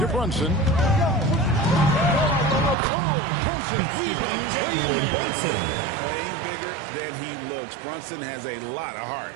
Brunson. Brunson weaving his way in there. Playing bigger than he looks. Brunson has a lot of heart.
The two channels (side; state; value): left; drops out; at 2.8 s